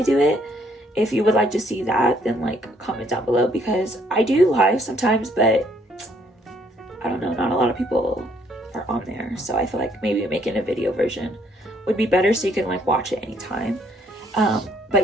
do it. If you would like to see that, then like comment down below, because I do live sometimes, but I don't know, not a lot of people are on there. So I feel like maybe making a video version would be better, so you can like watch it anytime. But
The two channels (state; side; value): normal; both; correlation 0.66